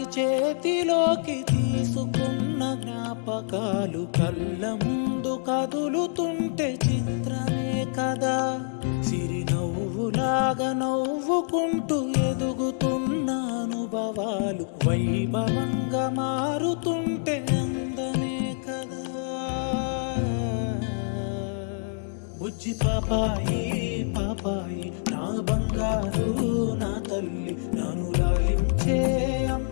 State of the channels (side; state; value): right; silent; digital silence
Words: చేతిలోకి తీసుకున్న జ్ఞాపకాలు కళ్ళ ముందు కదులుతుంటే చిత్రమే కదా. సిరినవ్వులాగా నవ్వుకుంటూ ఎదుగుతున్న అనుభవాలు వైభవంగా మారుతుంటే అందమే కదా. బుజ్జి పాపాయి పాపాయి నా బంగారు నా తల్లి, నన్ను లాలించే